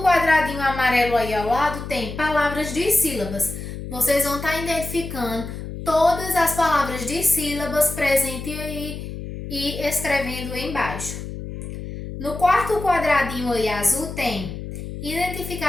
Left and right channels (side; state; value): left; noise; hum, 9 dB below the sound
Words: quadradinho amarelo aí ao lado tem palavras de sílabas. Vocês vão estar identificando todas as palavras de sílabas presentes aí e escrevendo embaixo. No quarto quadradinho aí azul tem